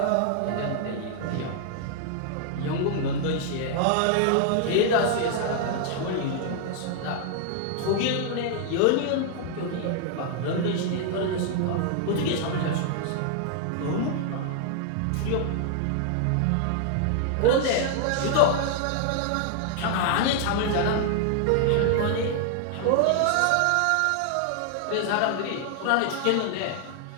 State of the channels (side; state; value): both; different; correlation 0.00